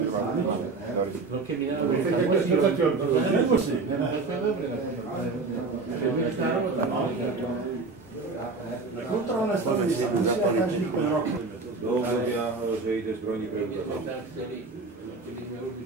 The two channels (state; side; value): quieter; left; 3.9 dB